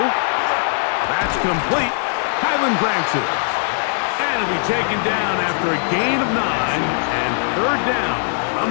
That's complete. Highland grants it. And it'll be taken down after a gain of 9 and third down.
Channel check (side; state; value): right; silent; digital silence